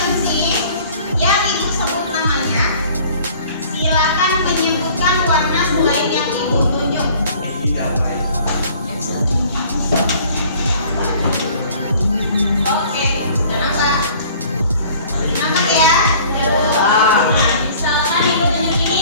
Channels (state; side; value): inverted; both; correlation -0.51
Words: yang ibu sebut namanya, silakan menyebutkan warna selain yang ibu tunjuk. Oke, kenapa? Kenapa ya? Misalkan ibu tunjuk